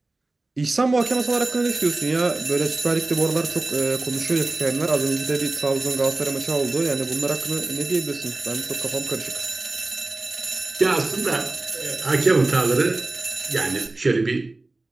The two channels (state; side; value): quieter; left; 3.1 dB